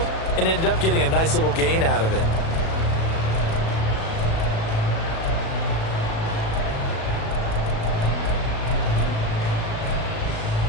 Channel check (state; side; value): late; right; 37 ms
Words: and ended up getting a nice little gain out of it.